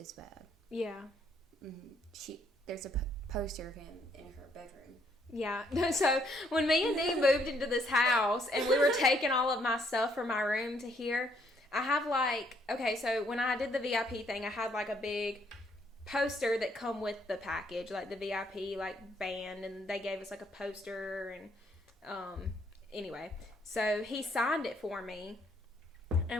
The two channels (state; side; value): normal; both; correlation 0.69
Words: bad. Yeah. Mm-hmm. There's a poster of him in her bedroom. Yeah. So, when me and Dee moved into this house, and we were taking all of my stuff from my room to here, I have, like, okay, so when I did the VIP thing, I had, like, a big poster that come with the package, like the VIP, like, band, and they gave us, like, a poster, and, anyway, so he signed it for me,